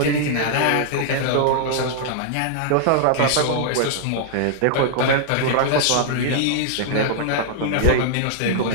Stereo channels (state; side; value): different; both; correlation -0.01